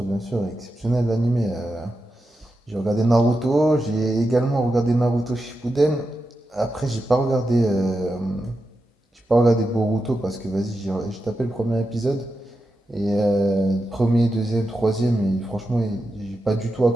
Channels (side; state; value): both; normal; correlation 0.89